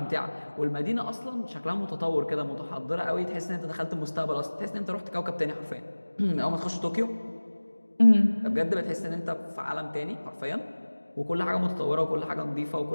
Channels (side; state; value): both; inverted; correlation -1.00